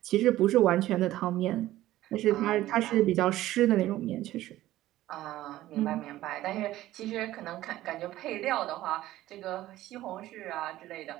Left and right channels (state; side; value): quieter; left; 15.1 dB